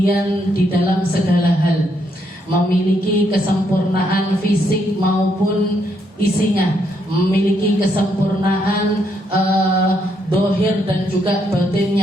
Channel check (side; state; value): both; normal; correlation 0.75